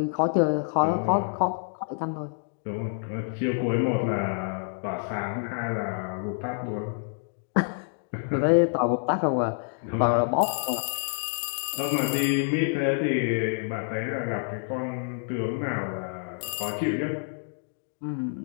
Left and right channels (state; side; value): silent; right; digital silence